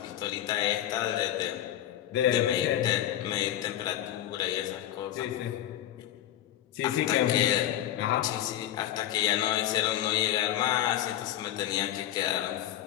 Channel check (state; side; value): quieter; right; 12.3 dB